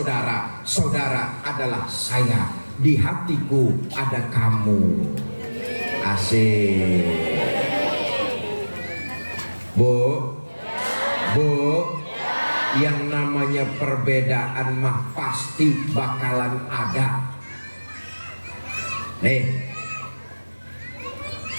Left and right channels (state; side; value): inverted; both; correlation -1.00